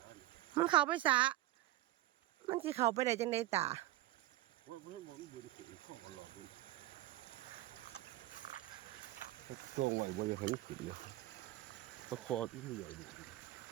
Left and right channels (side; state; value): left; quieter; 15.9 dB